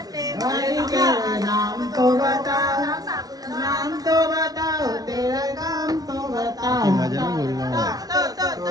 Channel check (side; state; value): left; late; 0.18 ms